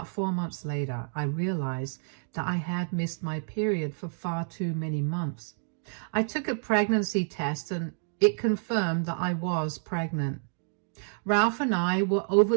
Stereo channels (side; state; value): left; silent; digital silence